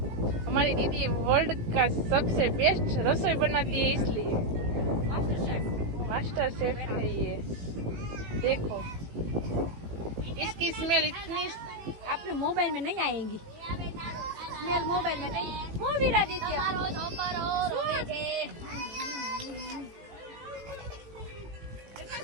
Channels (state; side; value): late; left; 18 ms